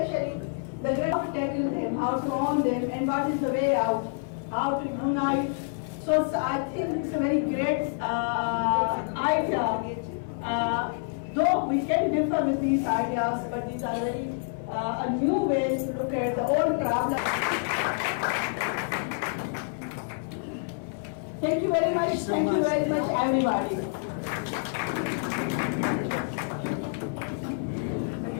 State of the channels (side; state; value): right; silent; 60 dB below the other